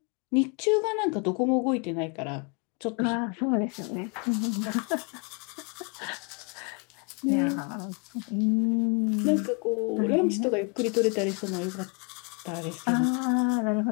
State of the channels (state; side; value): quieter; right; 35.2 dB